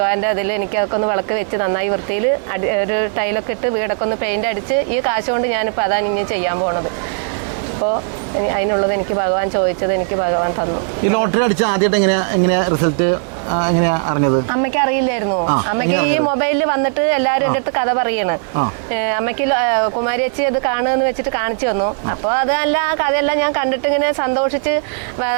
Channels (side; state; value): left; silent; digital silence